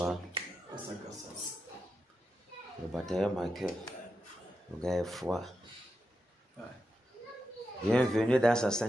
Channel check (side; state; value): both; normal; correlation 0.88